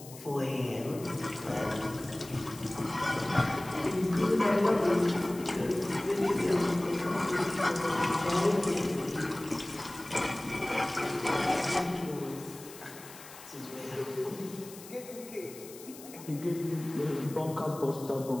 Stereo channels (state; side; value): noise; left; hiss, 17 dB below the sound